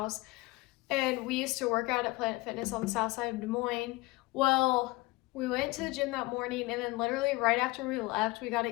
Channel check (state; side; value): quieter; right; 22.1 dB